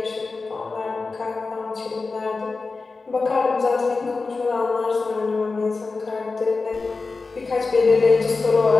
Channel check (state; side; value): quieter; right; 4.0 dB